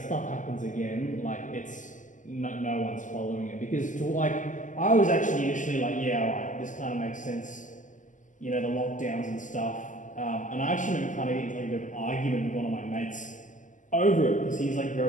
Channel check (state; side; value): late; right; 0.37 ms